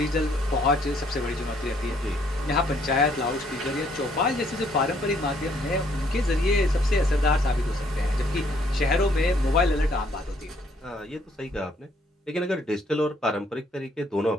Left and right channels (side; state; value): both; normal; correlation 0.66